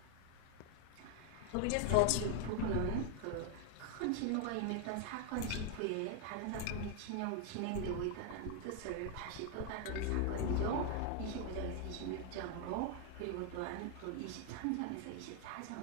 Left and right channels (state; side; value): different; both; correlation 0.00